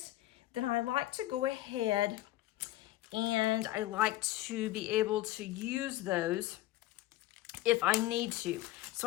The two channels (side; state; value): right; quieter; 15.8 dB